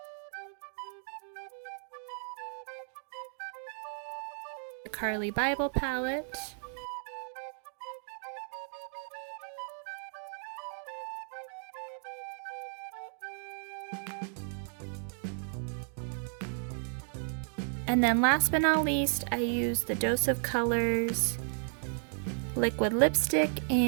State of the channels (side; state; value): left; silent; digital silence